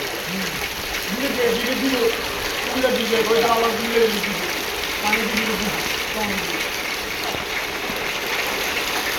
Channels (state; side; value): identical; both; correlation 1.00